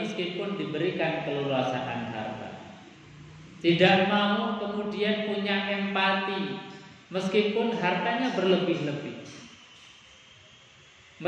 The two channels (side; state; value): both; identical; correlation 1.00